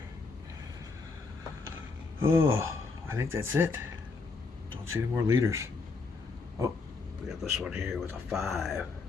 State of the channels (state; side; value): quieter; right; 4.3 dB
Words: Oh, I think that's it. Don't see any more leaders. Oh, we got this one here with a 5.